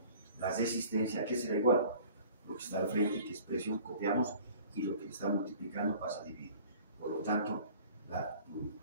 la resistencia, ¿qué será igual? Lo que está al frente, que es presión, copiamos, y lo que está multiplicando pasa a dividir. Por lo tanto, la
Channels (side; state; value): both; inverted; correlation -0.48